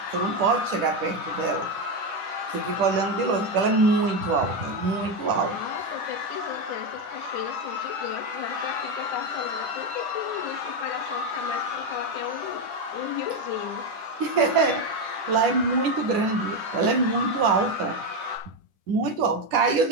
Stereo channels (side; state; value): left; late; 10 ms